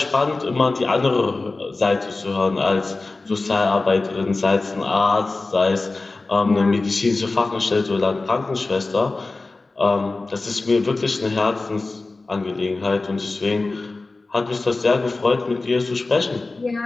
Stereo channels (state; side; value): quieter; right; 3.4 dB